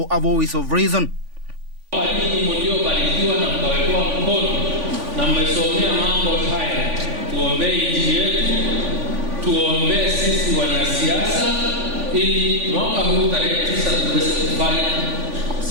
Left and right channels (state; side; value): late; left; 3.5 ms